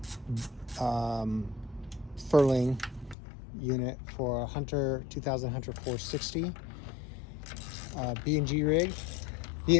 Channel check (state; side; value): drops out; right; at 3.2 s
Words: furling unit for a Hunter 2000 Hunter 460 B&G rig,